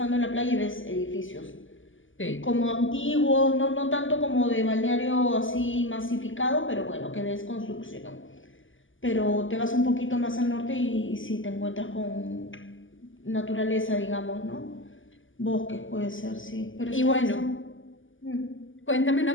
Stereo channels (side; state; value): right; late; 0.57 ms